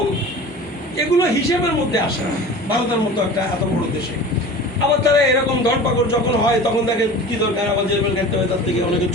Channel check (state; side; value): normal; both; correlation 0.38